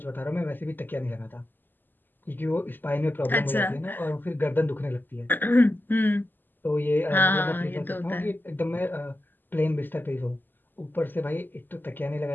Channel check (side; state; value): right; late; 0.091 ms